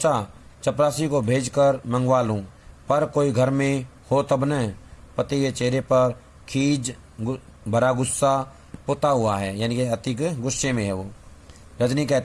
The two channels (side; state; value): both; identical; correlation 1.00